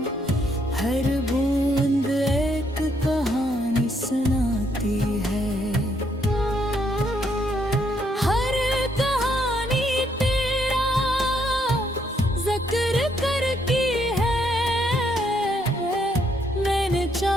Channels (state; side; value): normal; both; correlation 0.72